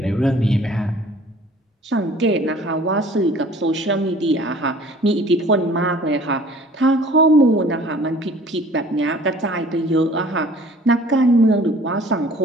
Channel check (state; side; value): normal; both; correlation 0.50